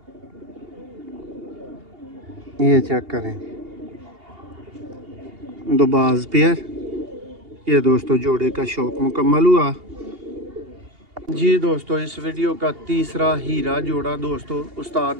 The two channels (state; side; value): late; left; 2.8 ms